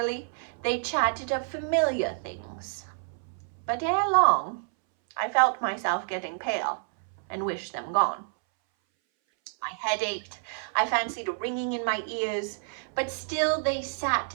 they chatted of familiar things. But ere long, I felt myself getting pale, and wished them gone. My head ached, I fancied a ringing in my ears, but still they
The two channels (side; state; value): left; silent; 59 dB below the other